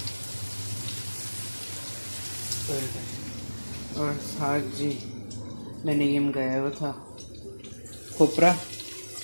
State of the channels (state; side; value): inverted; both; correlation -1.00